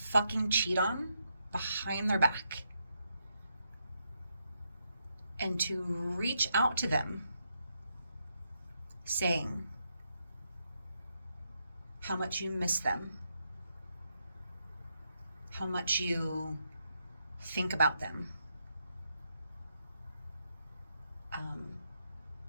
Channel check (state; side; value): inverted; both; correlation -0.80